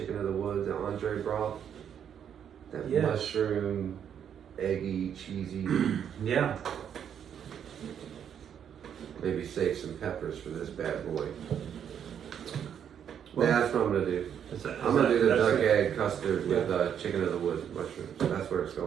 of the woods and entree broth. That Yes. mushroom, eggy, cheesy. Yeah. Maybe save some peppers for this bad boy. Well, That's what I'm gonna do. I'm gonna do the duck egg custard with chicken of the woods mushrooms. That's where it's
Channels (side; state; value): left; quieter; 8.6 dB